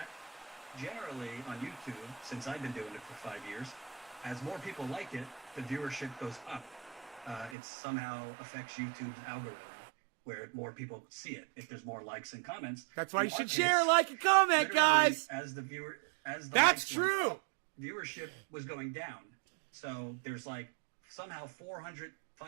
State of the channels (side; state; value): left; drops out; at 7.6 s